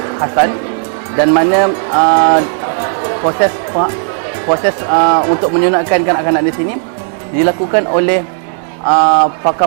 Hasan dan mana proses untuk menyunatkan kanak-kanak di sini dilakukan oleh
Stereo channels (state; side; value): silent; left; digital silence